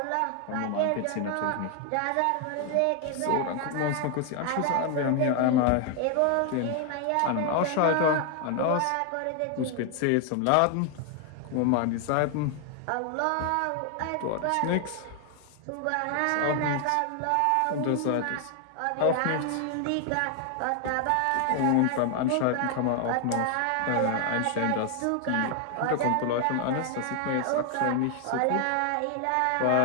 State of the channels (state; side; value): different; both; correlation 0.00